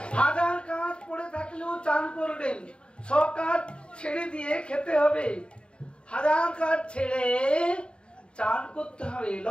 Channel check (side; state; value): right; late; 0.054 ms